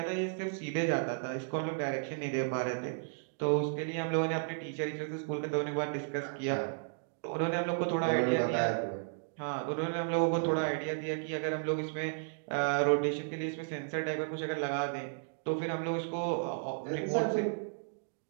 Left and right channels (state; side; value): silent; left; digital silence